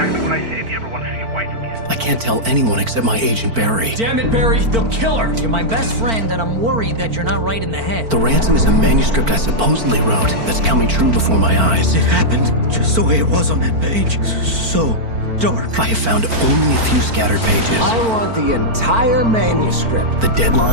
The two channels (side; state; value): left; late; 4.5 ms